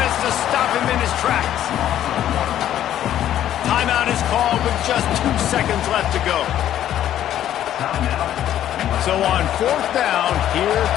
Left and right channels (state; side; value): quieter; right; 11.5 dB